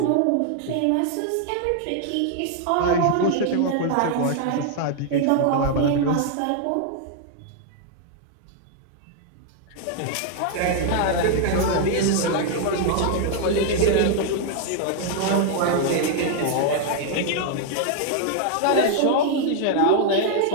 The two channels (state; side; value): different; both; correlation 0.00